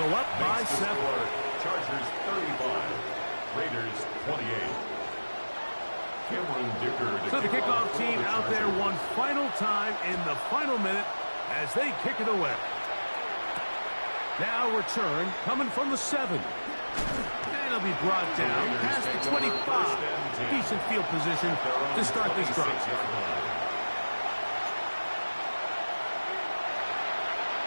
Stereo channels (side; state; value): both; inverted; correlation -1.00